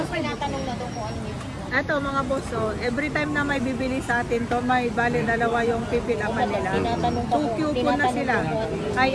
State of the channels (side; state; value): both; identical; correlation 1.00